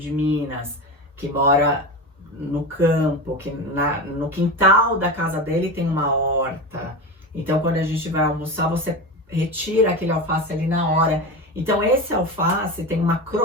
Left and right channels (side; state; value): both; normal; correlation 0.23